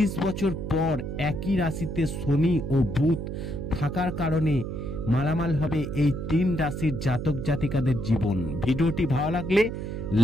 বছর পর একই রাশিতে শনি ও বুধ থাকার কারণে মালামাল হবে এই 3 রাশির জাতক জাতিকাদের জীবন। ভিডিওটি ভালো লাগলে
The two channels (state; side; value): noise; right; hum, 5 dB below the sound